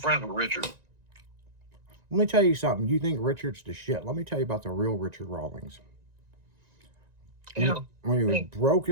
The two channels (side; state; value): left; late; 1.9 ms